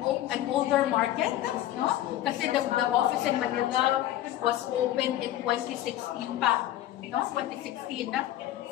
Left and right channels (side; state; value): right; quieter; 13.4 dB